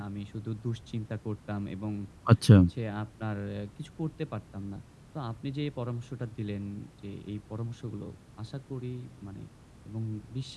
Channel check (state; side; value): identical; both; correlation 1.00